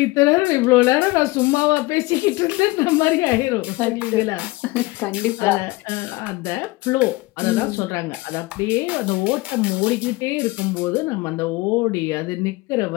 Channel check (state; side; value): quieter; right; 21.8 dB